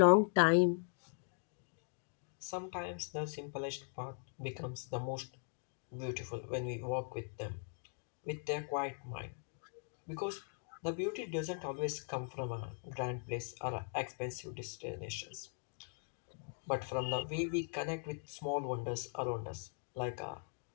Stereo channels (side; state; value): right; silent; 51 dB below the other